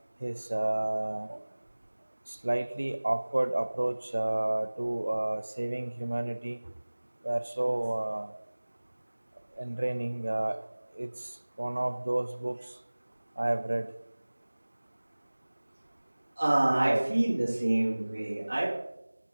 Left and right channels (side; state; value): both; inverted; correlation -1.00